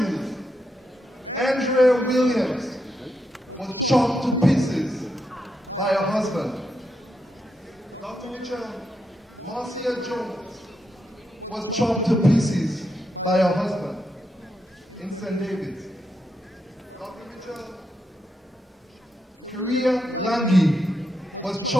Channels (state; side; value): normal; both; correlation 0.83